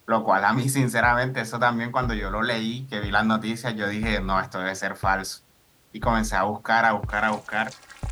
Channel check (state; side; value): identical; both; correlation 1.00